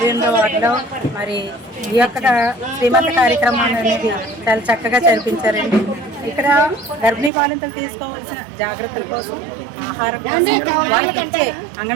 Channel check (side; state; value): left; drops out; at 7.3 s